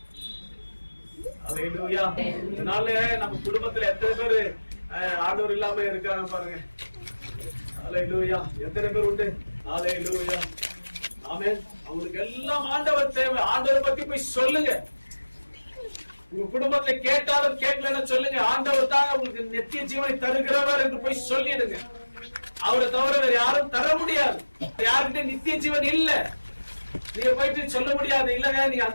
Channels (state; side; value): inverted; both; correlation -1.00